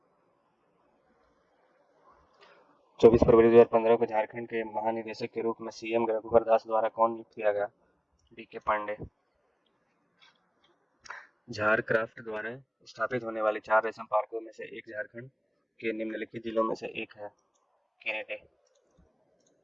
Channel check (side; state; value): both; identical; correlation 1.00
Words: 24 फरवरी 2015 को झारखंड के महानिदेशक के रूप में सीएम रघुवर दास द्वारा कौन नियुक्त किया गया? डीके पांडे। झारक्राफ्ट द्वारा स्थापित होने वाले 4 रेशम पार्कों में से एक झारखंड के निम्नलिखित जिलों में से एक है? गिरिडीह।